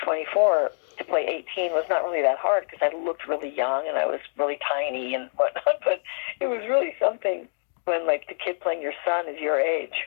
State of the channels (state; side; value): silent; right; digital silence